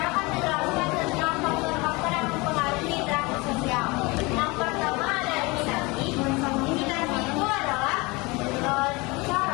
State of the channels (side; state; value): right; quieter; 25.3 dB